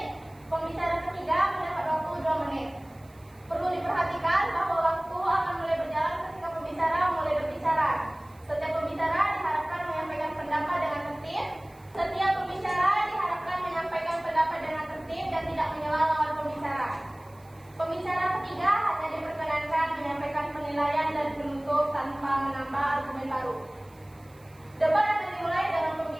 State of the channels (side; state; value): right; noise; hiss, 29 dB below the sound